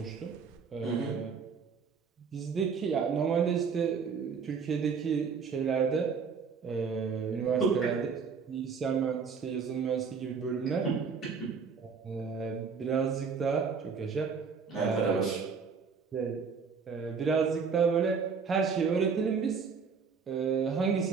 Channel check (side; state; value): left; quieter; 5.7 dB